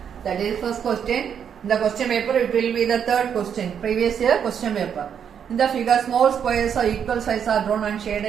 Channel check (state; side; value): quieter; left; 8.0 dB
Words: That is first question. In the question paper it will be the third question, previous year question paper. In the figure small squares of equal size are drawn and